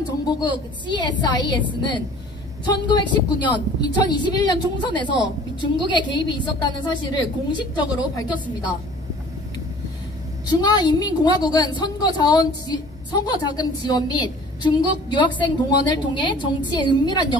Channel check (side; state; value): both; normal; correlation 0.49